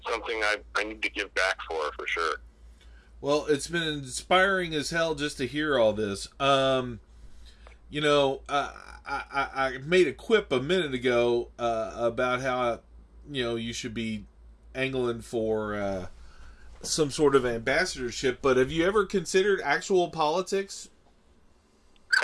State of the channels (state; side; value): identical; both; correlation 1.00